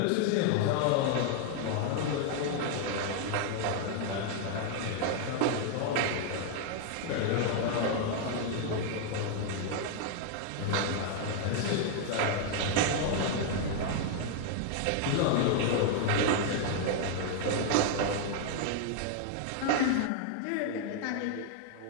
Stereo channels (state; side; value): different; both; correlation 0.00